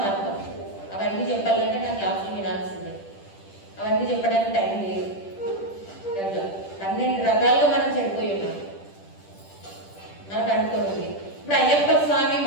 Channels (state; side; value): late; right; 10 ms